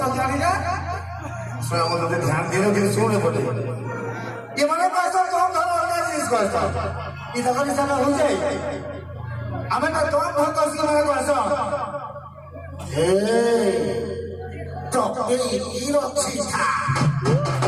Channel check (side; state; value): both; identical; correlation 1.00